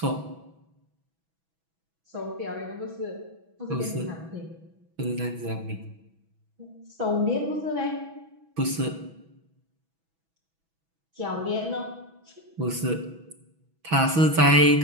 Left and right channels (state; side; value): late; left; 6.1 ms